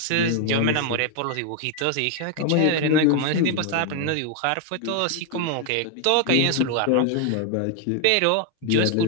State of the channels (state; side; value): different; both; correlation 0.01